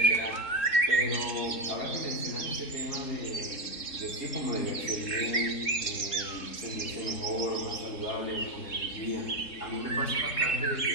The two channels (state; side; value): late; right; 3.7 ms